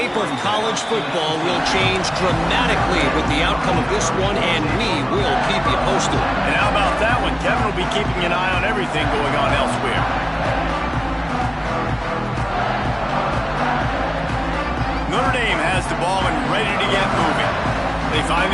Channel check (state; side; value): identical; both; correlation 1.00